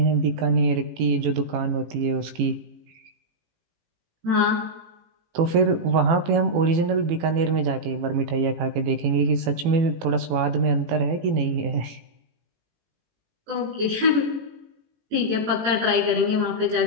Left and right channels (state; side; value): late; left; 18 ms